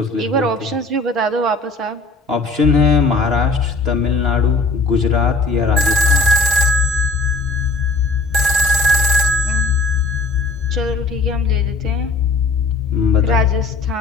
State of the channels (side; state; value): right; quieter; 3.4 dB